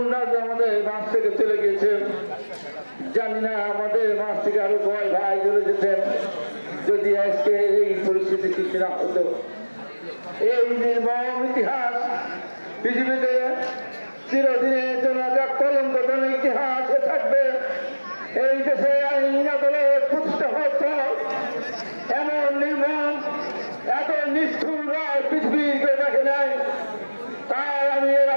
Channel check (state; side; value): inverted; both; correlation -1.00